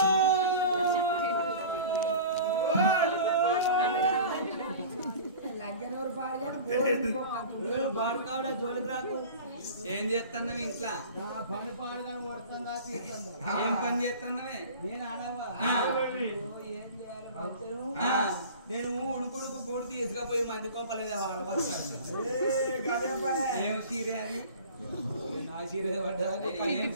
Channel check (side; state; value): both; inverted; correlation -0.39